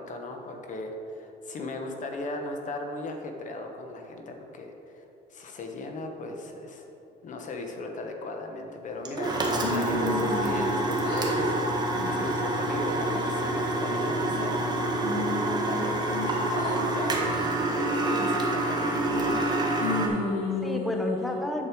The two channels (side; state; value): both; normal; correlation 0.38